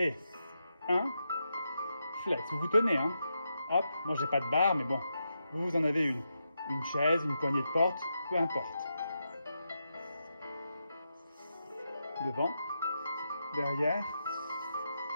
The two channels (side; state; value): both; inverted; correlation -0.85